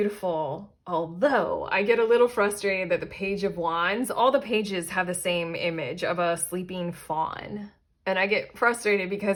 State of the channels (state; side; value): identical; both; correlation 1.00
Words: although I get a little frustrated that the Page of Wands, all the pages have the same image of a sleeping fawn. And I get frustrated